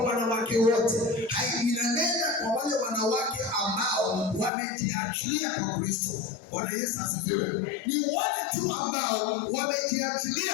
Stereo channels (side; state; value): right; drops out; at 4.5 s